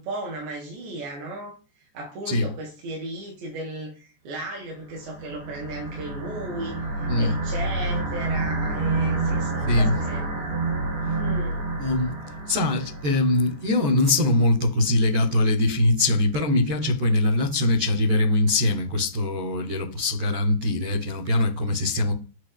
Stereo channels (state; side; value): late; left; 14 ms